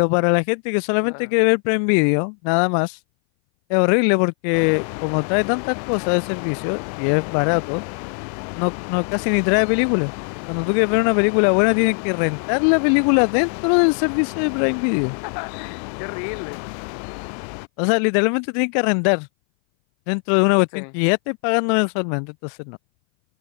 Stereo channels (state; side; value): silent; right; 59 dB below the other